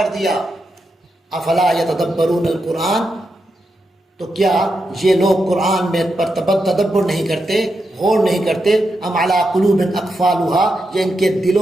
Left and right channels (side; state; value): both; normal; correlation 0.86